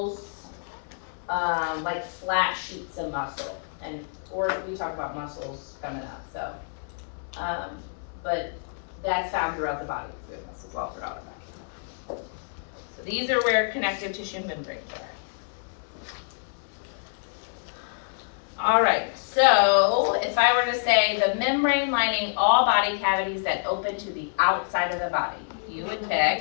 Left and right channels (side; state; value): right; silent; 60 dB below the other